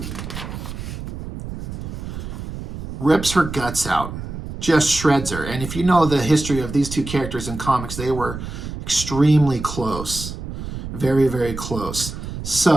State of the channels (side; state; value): right; noise; rumble, 8 dB below the sound